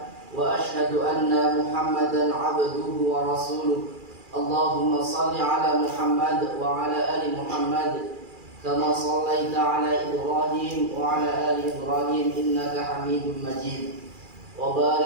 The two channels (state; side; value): late; left; 2.4 ms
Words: wa asyhadu anna Muhammadan abduhu wa rasuluh. Allahumma salli ala Muhammad wa ala ali Muhammad kama sallaita ala Ibrahim wa ala ali Ibrahim innaka Hamidum Majid. Wa